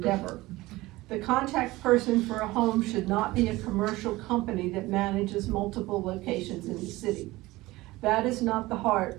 The contact person for a home should not be a commercial company that manages multiple locations in the city. That is not the heart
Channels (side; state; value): left; quieter; 19.4 dB